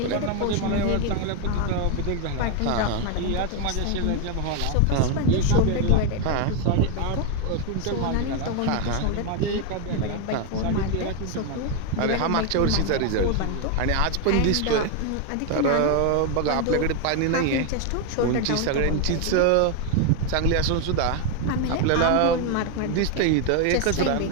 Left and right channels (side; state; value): both; different; correlation 0.01